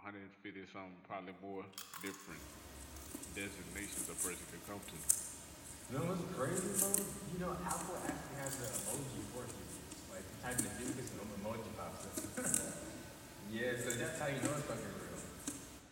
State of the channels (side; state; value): both; identical; correlation 1.00